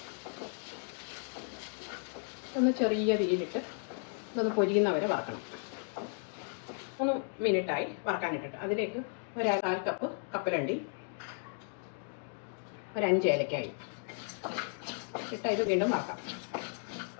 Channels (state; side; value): silent; right; 55 dB below the other